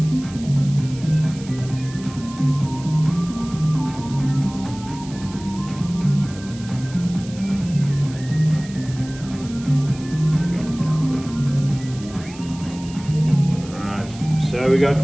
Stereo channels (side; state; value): right; noise; hiss, 18 dB below the sound